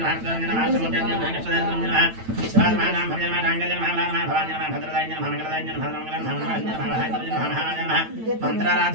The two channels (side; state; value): left; late; 9.0 ms